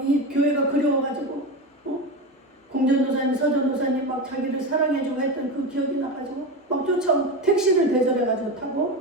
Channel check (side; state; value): both; normal; correlation 0.20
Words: 이 교회가 그리워가지고 공전도사님, 서전도사님 막 자기를 사랑해주고 했던 그 기억이 나가지고 막 쫓아온 택시를 대절해가지고